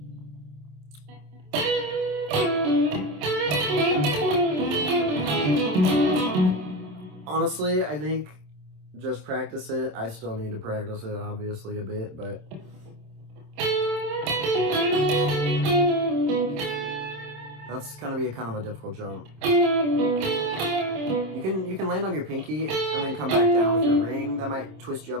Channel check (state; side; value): late; left; 27 ms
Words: Honestly, I think just practice it. I still need to practice it, obviously, a bit, but that's gonna be a kind of a difficult jump. You can land on your pinky and then come back down with your ring. That might twist you